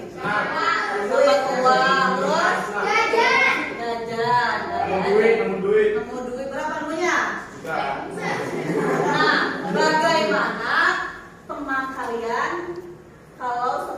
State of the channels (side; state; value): both; identical; correlation 1.00